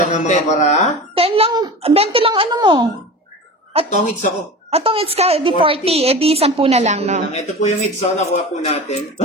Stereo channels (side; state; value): both; normal; correlation 0.32